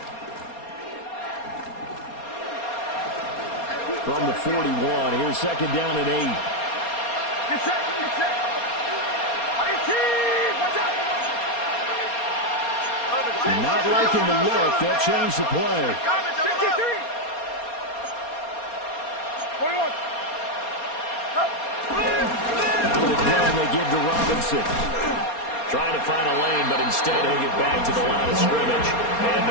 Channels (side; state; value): right; late; 4.3 ms